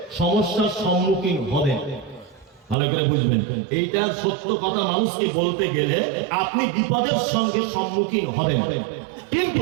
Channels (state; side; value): drops out; left; at 2.8 s